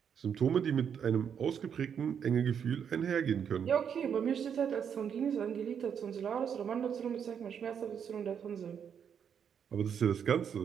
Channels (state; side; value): quieter; left; 7.7 dB